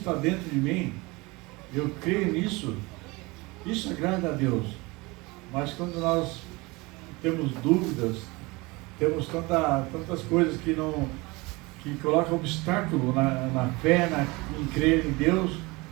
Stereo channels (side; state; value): left; quieter; 24.0 dB